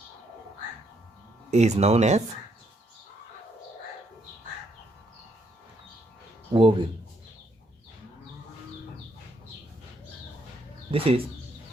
is known as ovule. This is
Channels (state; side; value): normal; both; correlation 0.73